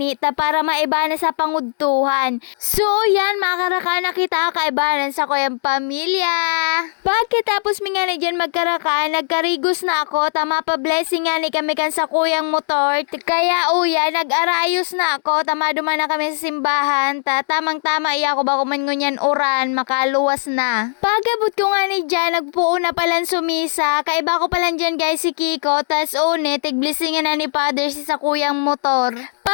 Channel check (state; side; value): silent; right; digital silence